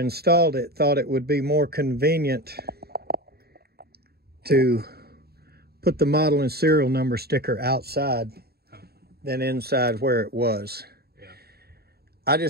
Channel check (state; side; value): late; left; 0.46 ms